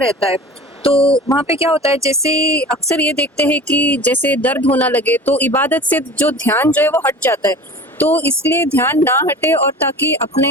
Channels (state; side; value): normal; both; correlation 0.39